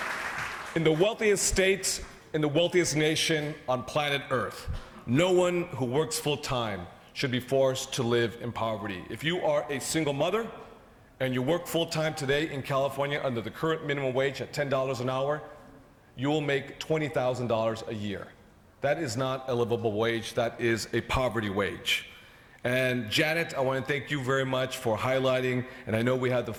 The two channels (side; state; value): both; identical; correlation 1.00